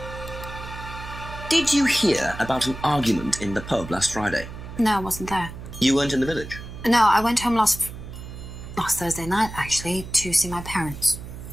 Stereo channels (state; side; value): noise; right; hum, 12 dB below the sound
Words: Did you hear about an argument in the pub last Friday? No, I wasn't there. You weren't in the village? No, I went home last Thursday night, actually, to see my parents.